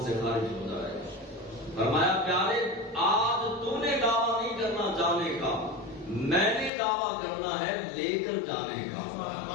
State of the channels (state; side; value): drops out; right; at 6.7 s